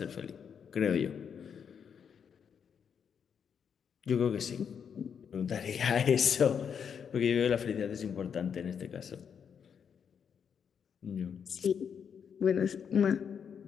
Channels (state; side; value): quieter; right; 7.3 dB